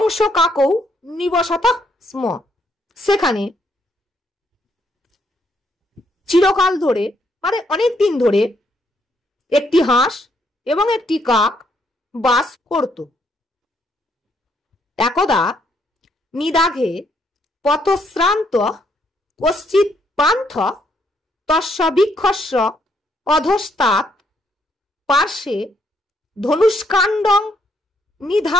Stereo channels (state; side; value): normal; both; correlation 0.72